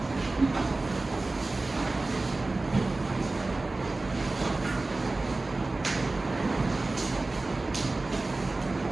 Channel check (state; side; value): quieter; left; 3.2 dB